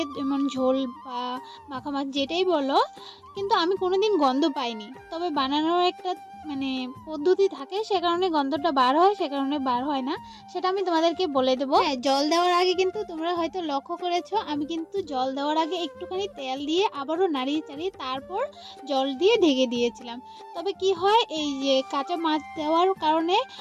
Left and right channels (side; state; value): both; identical; correlation 1.00